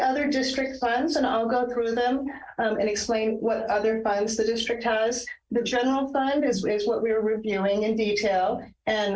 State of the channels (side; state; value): both; identical; correlation 1.00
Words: district funds, and I'll go through them and explain what other funds the district has. The general fund is what we were reviewing in detail,